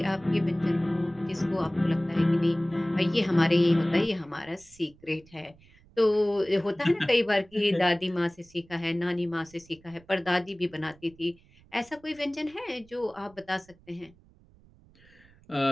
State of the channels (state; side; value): noise; right; rumble, 28 dB below the sound